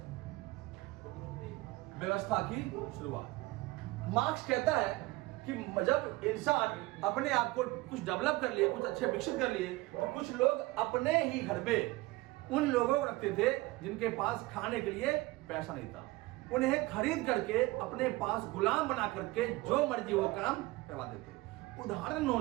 व्यवस्था की शुरुआत। मार्क्स कहता है कि जब इंसान अपने आप को कुछ डेवलप कर लिए, कुछ अच्छे विकसित कर लिए, तो कुछ लोग अपने ही घर पे उन लोगों को रखते थे जिनके पास खाने के लिए पैसा नहीं था। उन्हें खरीद करके अपने पास गुलाम बना करके जो मर्जी वो काम करवा देते। उदाहरण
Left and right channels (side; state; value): left; quieter; 20.7 dB